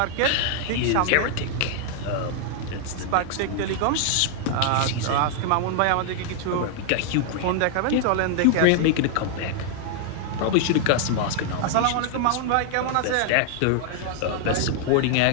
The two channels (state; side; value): different; both; correlation 0.00